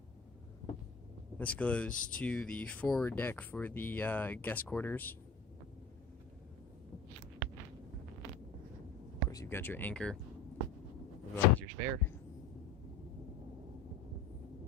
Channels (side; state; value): right; quieter; 4.4 dB